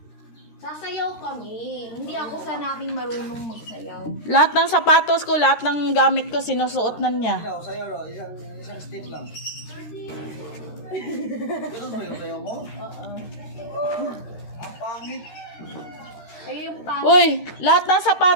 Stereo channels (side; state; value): right; late; 13 ms